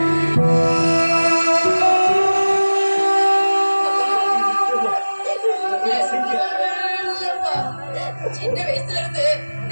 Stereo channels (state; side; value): inverted; both; correlation -1.00